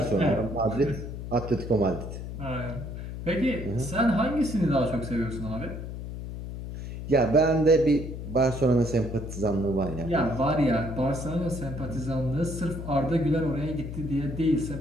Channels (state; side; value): noise; left; hum, 8 dB below the sound